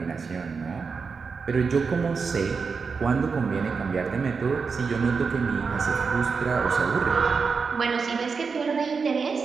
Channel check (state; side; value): quieter; left; 5.2 dB